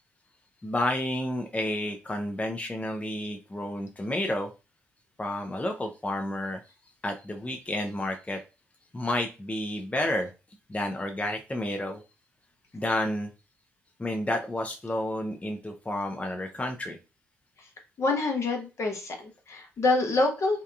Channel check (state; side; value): normal; both; correlation 0.76